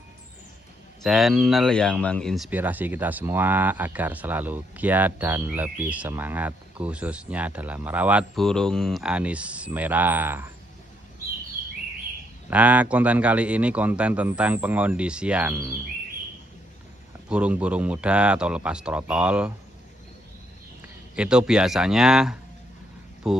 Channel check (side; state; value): both; normal; correlation 0.73